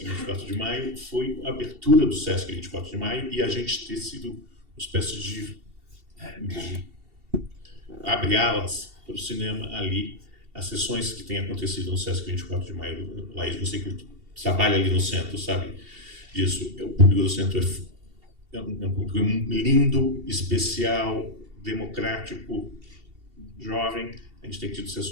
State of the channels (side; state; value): left; late; 2.7 ms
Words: em 24 de maio, foi a abertura do Sesc em 24 de maio, e a gente ter sido uma espécie de abre alas para o cinema ali. As sessões que têm acontecido no Sesc 24 de maio, Laís, você que trabalha ali no centro, sabe disso. O público do centro é um público lindo, especial, democrático, jovem. A gente tem tido